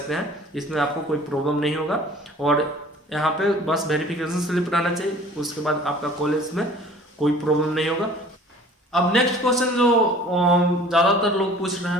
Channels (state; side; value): normal; both; correlation 0.48